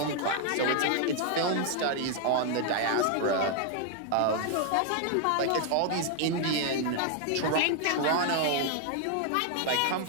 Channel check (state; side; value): different; both; correlation 0.00